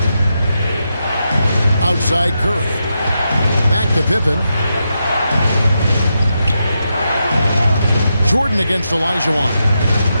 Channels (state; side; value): inverted; both; correlation -0.85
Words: Outside Curry. Back to Pippen. Jordan against Olajuwon.